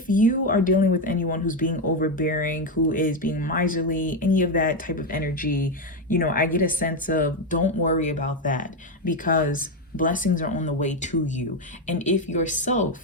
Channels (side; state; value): both; normal; correlation 0.08